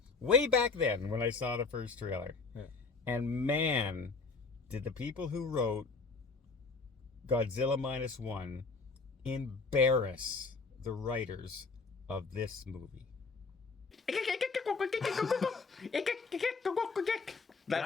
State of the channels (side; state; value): right; quieter; 4.3 dB